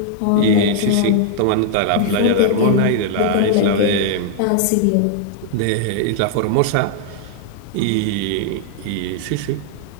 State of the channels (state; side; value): different; both; correlation 0.00